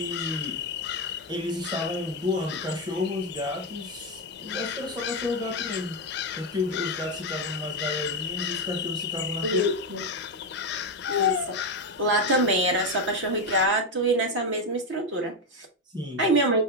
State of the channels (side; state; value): both; normal; correlation 0.09